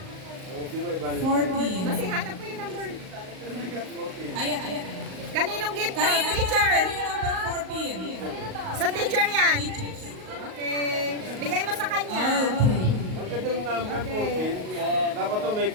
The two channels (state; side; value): late; left; 38 ms